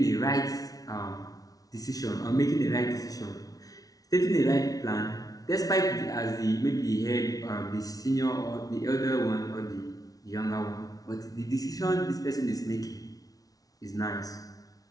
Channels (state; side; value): late; right; 0.18 ms